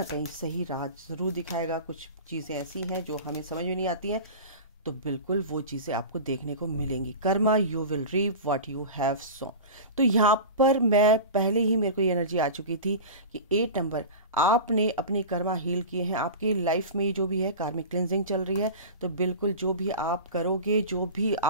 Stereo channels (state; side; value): inverted; both; correlation -0.31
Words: कहीं सही राह ज़रूर दिखाएगा। कुछ चीज़ें ऐसी हैं जो हमें समझ में नहीं आती हैं, तो बिल्कुल वो चीज़ें आपको देखने को मिलेंगी। Karma you will reap what you have sown. तो यहाँ पर मैं पहले ही मेरे को ये एनर्जी आ चुकी थी कि 8 नंबर आपने अपने कर्मा हील किए हैं। आपके लाइफ में जो भी है कार्मिक क्लिनजिंग चल रही है, तो बिल्कुल जो भी आप करोगे, जो भी